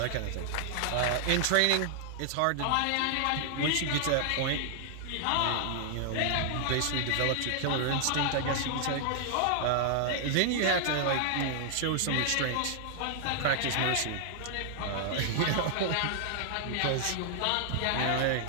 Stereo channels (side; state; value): both; different; correlation -0.01